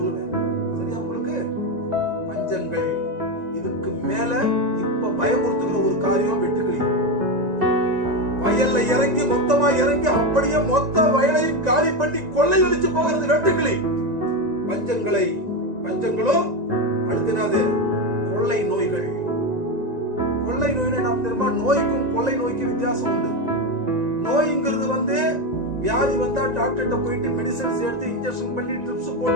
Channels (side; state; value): left; late; 1.9 ms